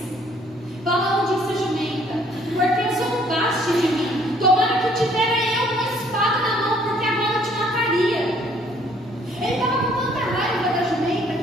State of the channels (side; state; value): both; normal; correlation 0.61